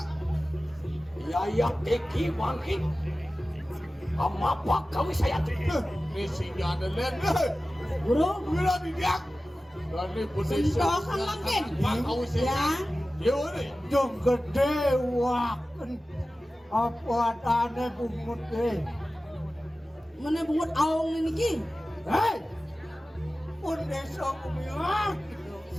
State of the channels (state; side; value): normal; both; correlation 0.96